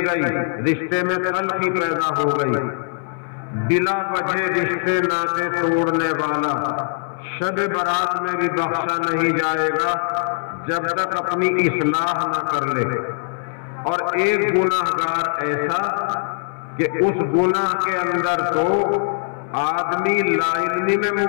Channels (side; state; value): right; silent; 65 dB below the other